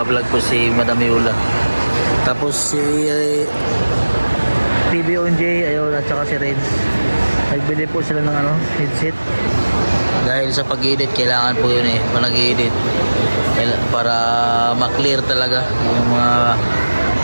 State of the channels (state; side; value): inverted; both; correlation -1.00